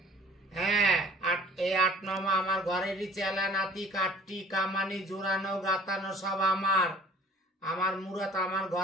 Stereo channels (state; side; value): normal; both; correlation 0.50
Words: হ্যাঁ, এই 8 নম্বর আমার ঘরেরই চেলা নাতি, কাটটি কামানি জোড়ানো গাতানো সব আমার মুরাত আমার